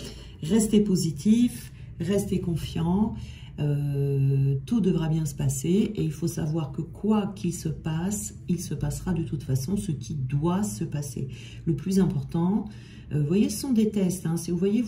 Restez positif, restez confiant, tout devra bien se passer et il faut savoir que quoi qu'il se passe, il se passera de toute façon ce qui doit se passer. Le plus important, vous voyez, ce sont des tests, hein. Si vous voyez,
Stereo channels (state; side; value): identical; both; correlation 1.00